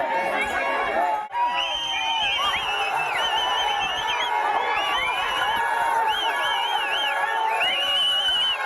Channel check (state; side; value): identical; both; correlation 1.00